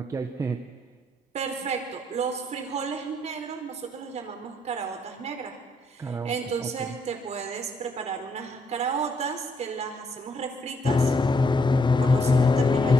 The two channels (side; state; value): both; normal; correlation 0.72